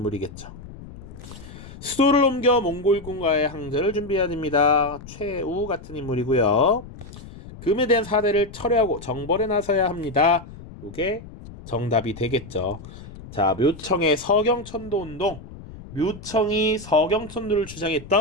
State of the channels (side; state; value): left; noise; rumble, 15 dB below the sound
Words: 수도를 옮겨 몽골군과의 항전을 준비해야 됩니다. 최우 같은 인물이고요. 금에 대한 사대를 철회하고 정벌에 나서야 합니다. 요게 정답이 되겠죠. 자, 묘청의 서경천도운동, 묘청이 서경천도를